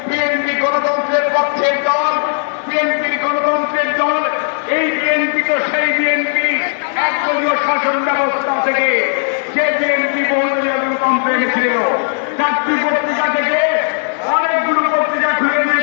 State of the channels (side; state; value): right; silent; digital silence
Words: বিএনপি গণতন্ত্রের পক্ষের দল, বিএনপির গণতন্ত্রের দল। এই বিএনপি তো সেই বিএনপি একদলীয় শাসন ব্যবস্থা থেকে যে বিএনপি বহুদলীয় গণতন্ত্র এনেছিল। 4টি পত্রিকা থেকে অনেকগুলো পত্রিকা খুলে